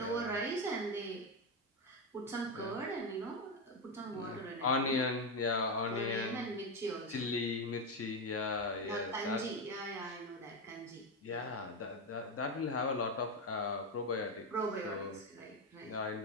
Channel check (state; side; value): normal; both; correlation 0.10